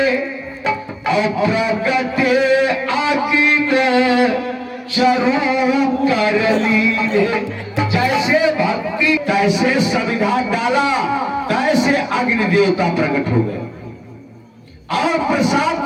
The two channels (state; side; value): identical; both; correlation 1.00